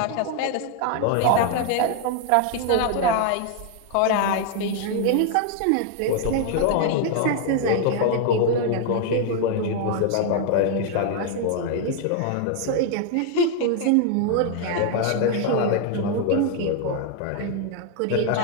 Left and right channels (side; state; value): both; different; correlation 0.00